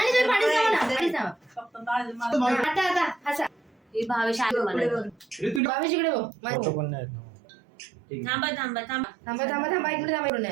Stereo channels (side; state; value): left; drops out; at 5.6 s